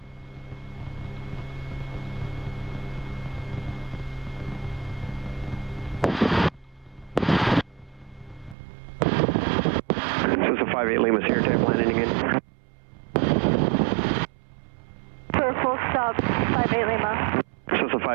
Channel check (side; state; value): left; drops out; at 8.6 s